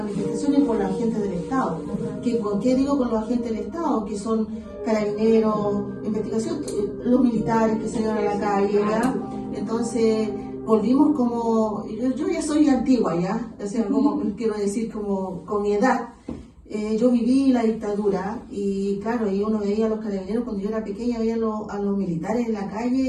y por la gente del Estado. ¿Qué digo con los agentes del Estado? Que son carabineros, investigación, los militares que salieron a la calle, ¿ya? Entonces, volvimos como, yo ya soy antigua, ¿ya? O sea, como, quiero decir, como con mi edad. Yo viví la dictadura y claro, y uno veía a los carabineros cuando yo era pequeña, veía a los militares en la calle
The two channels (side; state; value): both; identical; correlation 1.00